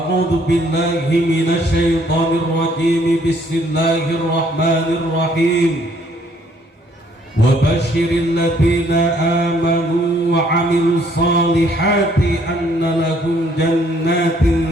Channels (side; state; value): both; normal; correlation 0.64